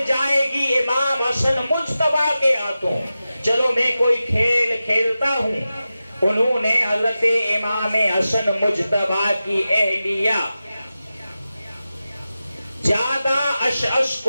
جائے گی امام حسن مجتبیٰ کے ہاتھوں، چلو میں کوئی کھیل کھیلتا ہوں۔ انہوں نے حضرت امام حسن مجتبیٰ کی اہلیہ زیادہ اشعث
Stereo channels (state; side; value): inverted; both; correlation -0.93